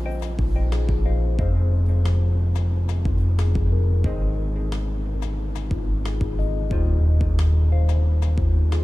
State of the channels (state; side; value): normal; both; correlation 0.97